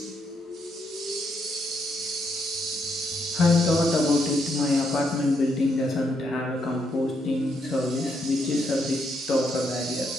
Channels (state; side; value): normal; both; correlation 0.77